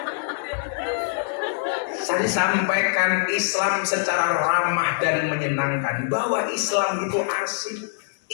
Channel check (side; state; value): right; silent; digital silence